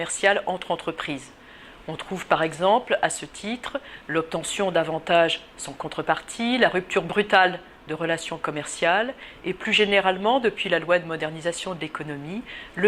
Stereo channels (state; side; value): identical; both; correlation 1.00